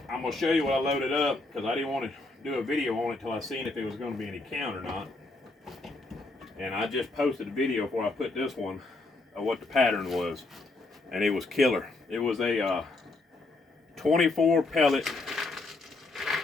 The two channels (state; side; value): quieter; right; 3.2 dB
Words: gonna show you what I loaded up because I didn't want to do a video on it till I seen if it was going to be any count or not. And I just posted a video before I put this one of what the pattern was, and it was killer. It was a 24 pellet